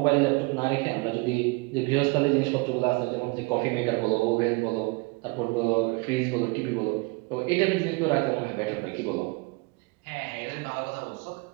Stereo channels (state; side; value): quieter; left; 27.2 dB